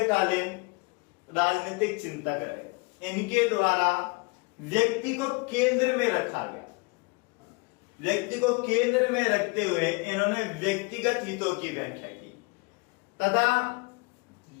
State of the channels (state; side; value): quieter; right; 29.3 dB